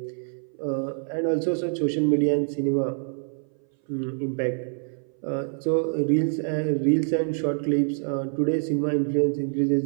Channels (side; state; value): left; silent; 58 dB below the other